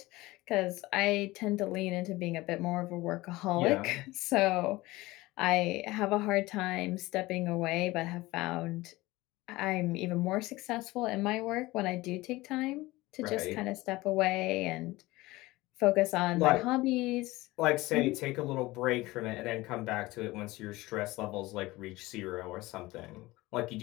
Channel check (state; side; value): quieter; right; 19.7 dB